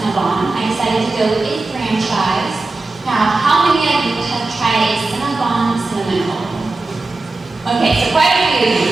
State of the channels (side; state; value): left; quieter; 3.3 dB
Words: I decided to go with a franchise. Now, how many of you have tried a Cinnabon cinnamon roll? Okay, so quite a few of